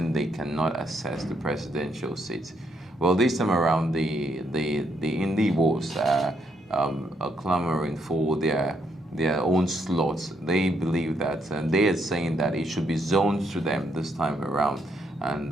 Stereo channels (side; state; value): both; normal; correlation 0.74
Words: they cannot access the presidential seat? Well, this time around, the Igbos are clamoring for their own slots. They believe that, and they are saying that it should be zoned to them this time around, and